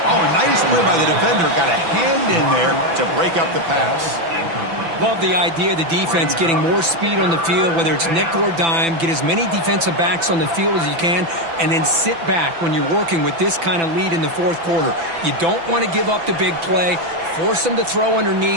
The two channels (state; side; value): late; left; 6.0 ms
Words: Oh, a nice play by the defender. Got a hand in there to break up the pass. Love the idea of the defense getting more speed on the field, whether it's nickel or dime. Get as many defensive backs on the field as you can, and then sit back when you're working with this kind of lead in the fourth quarter. You don't want to give up the big play. Force them to throw